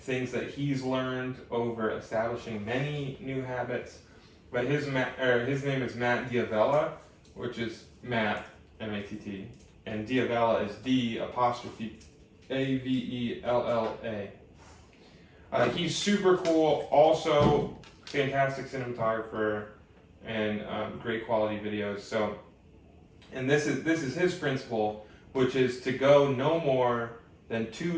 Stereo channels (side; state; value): both; identical; correlation 1.00